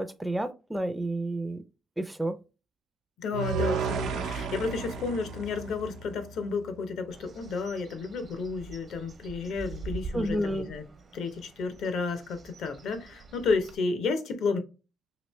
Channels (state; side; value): normal; both; correlation 0.71